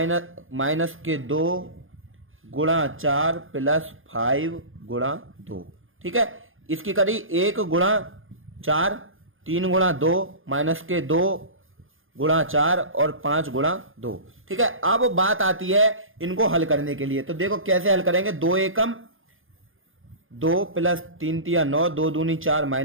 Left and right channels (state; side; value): late; left; 0.59 ms